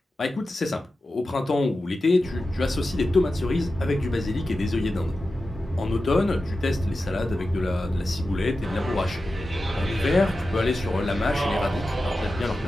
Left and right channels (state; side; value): normal; both; correlation 0.92